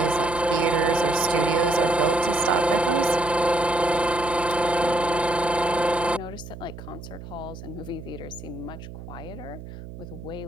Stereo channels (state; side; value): noise; right; hum, 13 dB below the sound